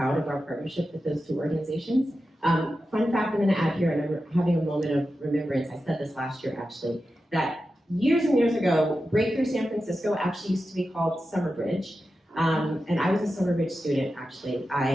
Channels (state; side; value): normal; both; correlation 0.91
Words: of our partnership with those two organizations. Fun fact I'm going to add here, and I'm having a moment of remembrance. I said this last year actually, that years and years ago, Breakthrough San Francisco actually used to be called Summerbridge. And I was a Summerbridge student, actually.